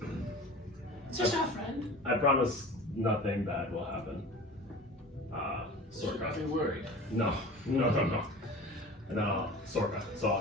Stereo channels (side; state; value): both; normal; correlation 0.38